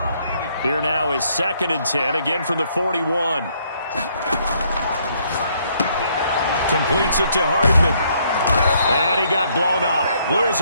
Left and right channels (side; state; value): both; inverted; correlation -0.69